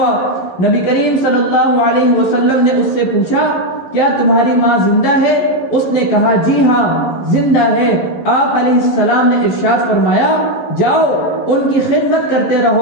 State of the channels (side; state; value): right; late; 11 ms